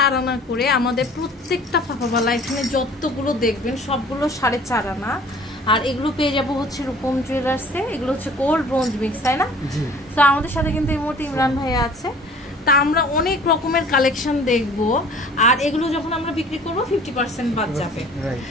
আনা করে। আমাদের প্রত্যেকটা ফাফাবালা এখানে যতগুলো দেখবেন সবগুলো 4.5 আনা। আর এগুলো পেয়ে যাবো হচ্ছে রূপম জুয়েলার্সে। এগুলো হচ্ছে গোল্ড ব্রোঞ্জ মিক্স, তাই না? তো আমাদের সাথে কিন্তু এই মুহূর্তে ইমরান ভাইয়া আছে। তা আমরা অনেক রকমের কালেকশন দেখব, আর এগুলো যখন আমরা বিক্রি করবো 50% বাদ যাবে।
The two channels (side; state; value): both; normal; correlation 0.49